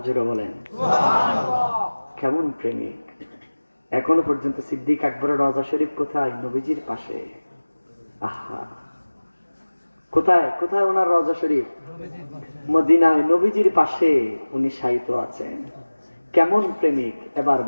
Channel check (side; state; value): both; inverted; correlation -1.00